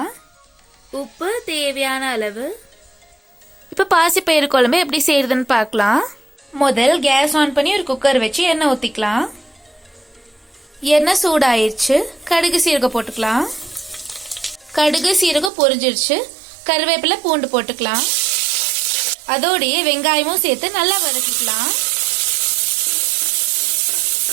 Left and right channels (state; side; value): drops out; left; at 15.5 s